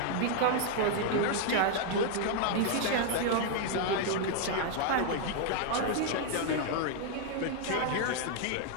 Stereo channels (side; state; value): both; different; correlation 0.00